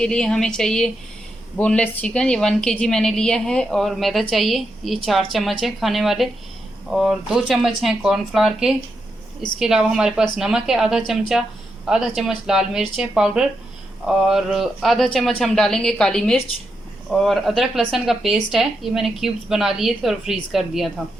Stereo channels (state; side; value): normal; both; correlation 0.84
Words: लिए हमें चाहिए बोनलेस चिकन, ये 1 kg मैंने लिया है। और मैदा चाहिए, ये 4 चम्मच है खाने वाले। और 2 चम्मच हैं कॉर्नफ्लावर के। इसके अलावा हमारे पास नमक है आधा चमचा, आधा चम्मच लाल मिर्च है पाउडर, और आधा चम्मच हम डालेंगे काली मिर्च। और अदरक लहसुन का पेस्ट है, ये मैंने क्यूब्स बना लिए थे और फ्रीज़ कर दिया था।